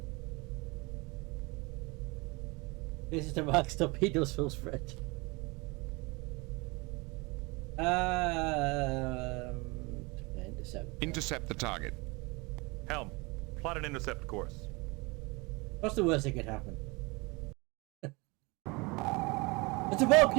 This is the Max torpedoes full spread. Intercept. Intercept the target. Helm, plot an intercept course. What's the worst that could happen? It's a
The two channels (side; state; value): left; quieter; 26.3 dB